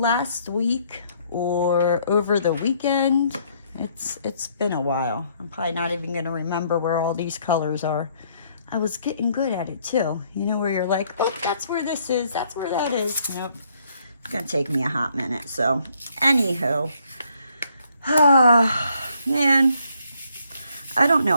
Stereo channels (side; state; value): both; inverted; correlation -0.68